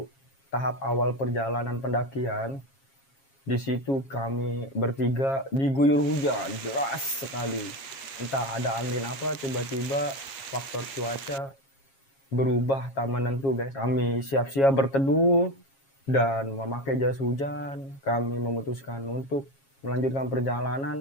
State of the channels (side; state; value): right; late; 7.3 ms